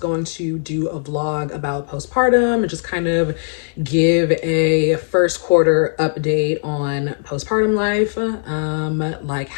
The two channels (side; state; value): right; silent; digital silence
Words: to do a vlog about postpartum and just kind of give a first quarter update on postpartum life, like